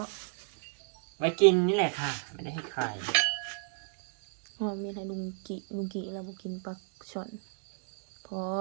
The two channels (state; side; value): silent; left; 56 dB below the other